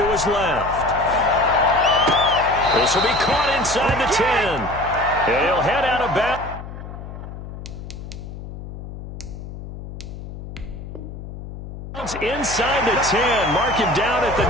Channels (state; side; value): noise; left; hum, 11 dB below the sound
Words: his left. This will be caught inside the 10. And he'll head out of bounds. Inside the 10, mark him down at the